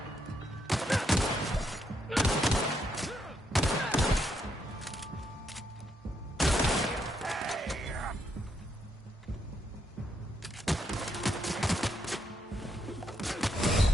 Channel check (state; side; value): normal; both; correlation 0.77